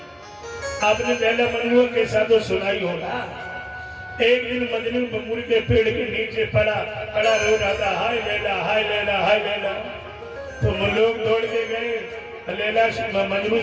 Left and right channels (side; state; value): both; identical; correlation 1.00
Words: आपने लैला मजनू के साथ तो सुनाई होगा। एक दिन मजनू बबूल के पेड़ के नीचे पड़ा रो रहा था, हाय लैला हाय लैला हाय लैला। तो लोग दौड़ के गए, लैला मजनू